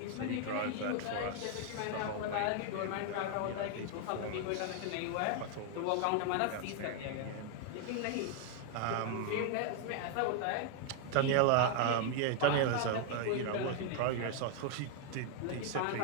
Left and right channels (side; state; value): both; different; correlation 0.00